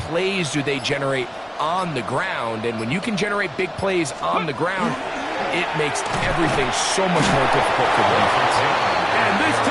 plays do they generate on the ground. And when you can generate big plays on the ground, it makes everything so much more difficult for the defense. And this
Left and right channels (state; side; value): identical; both; correlation 1.00